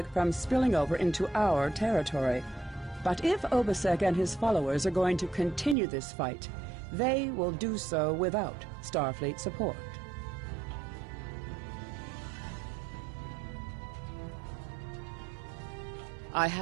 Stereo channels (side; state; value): left; drops out; at 5.8 s